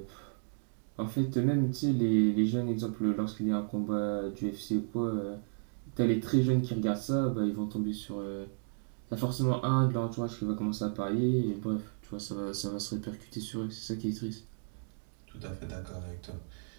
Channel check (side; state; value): left; silent; digital silence